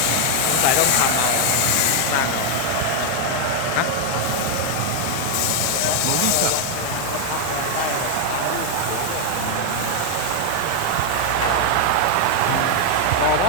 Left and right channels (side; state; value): both; different; correlation 0.00